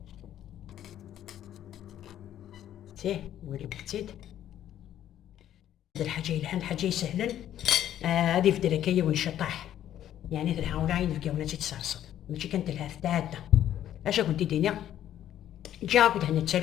تيه ولي بتيد هاد الحاجه الحين حاجه سهلا هادي في دركيه ونشطح يعني تنحاول عين في قونا تتصرصد ماشي كانت لها ثلاثه اش كنت دينا جا كنت هنا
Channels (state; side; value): quieter; right; 11.4 dB